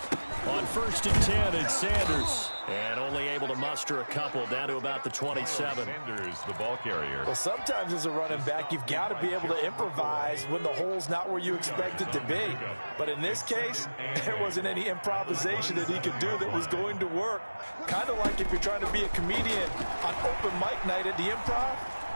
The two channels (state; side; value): inverted; both; correlation -1.00